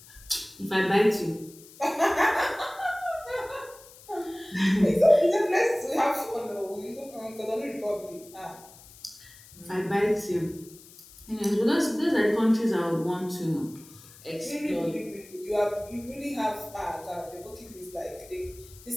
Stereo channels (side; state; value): left; noise; hiss, 21 dB below the sound